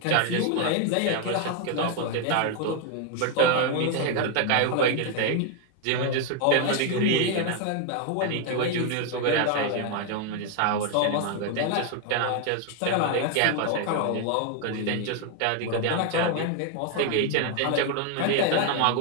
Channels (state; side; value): different; both; correlation 0.01